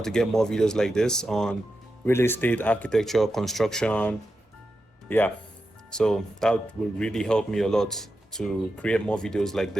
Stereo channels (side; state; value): both; normal; correlation 0.89